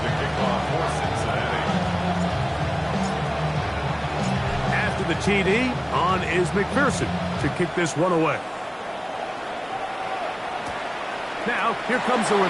to kick off for Cincinnati. After the TD, on is McPherson to kick this one away. Now, here comes a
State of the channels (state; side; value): identical; both; correlation 1.00